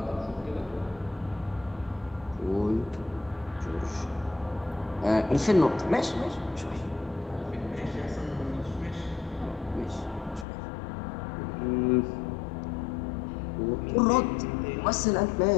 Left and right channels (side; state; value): right; drops out; at 10.5 s